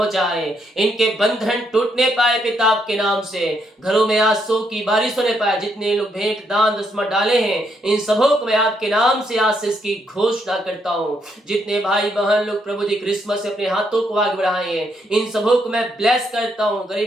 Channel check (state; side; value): normal; both; correlation 0.75